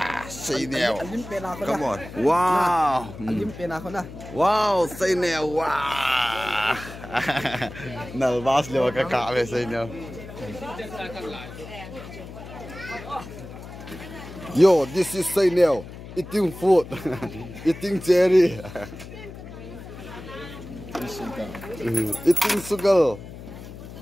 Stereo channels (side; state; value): left; noise; hum, 13 dB below the sound